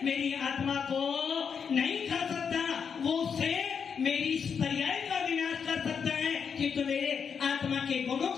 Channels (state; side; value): quieter; right; 6.6 dB